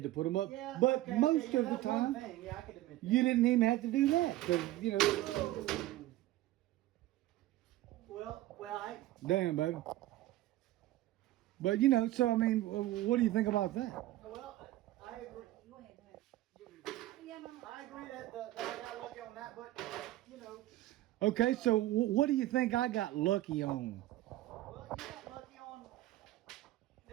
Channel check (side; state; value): left; quieter; 15.8 dB